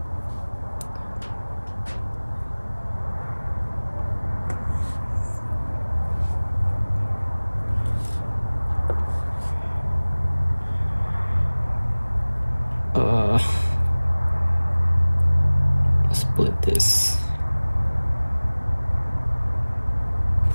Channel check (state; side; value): inverted; both; correlation -1.00